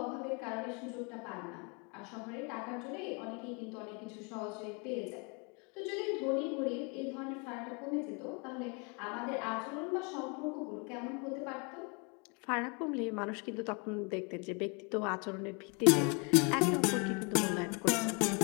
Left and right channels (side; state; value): right; quieter; 33.2 dB